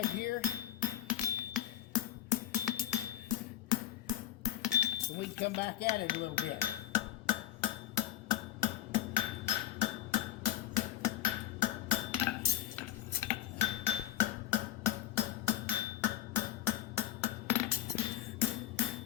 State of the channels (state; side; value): quieter; right; 12.4 dB